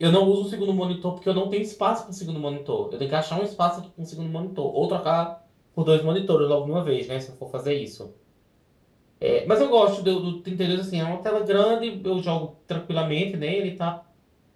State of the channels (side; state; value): both; identical; correlation 1.00